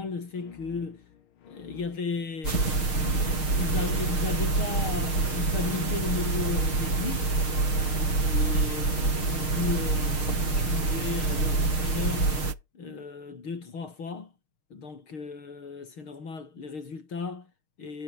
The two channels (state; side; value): late; right; 6.5 ms